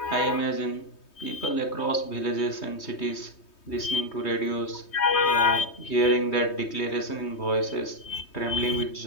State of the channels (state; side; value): late; right; 3.2 ms